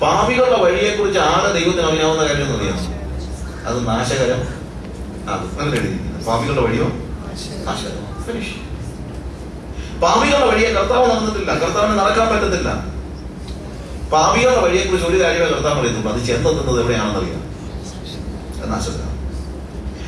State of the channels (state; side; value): identical; both; correlation 1.00